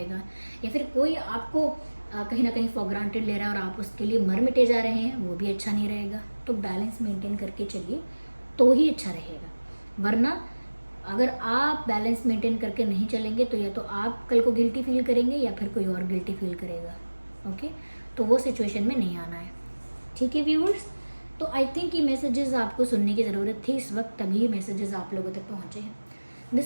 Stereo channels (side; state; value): both; inverted; correlation -1.00